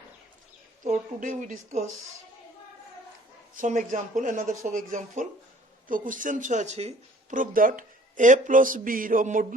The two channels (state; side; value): normal; both; correlation 0.54